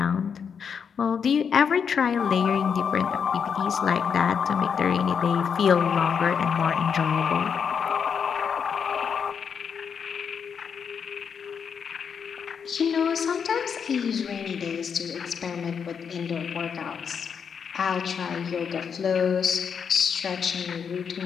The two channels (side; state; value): right; quieter; 6.8 dB